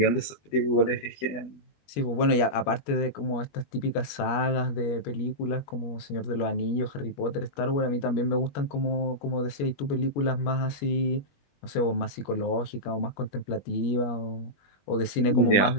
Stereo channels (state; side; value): late; right; 21 ms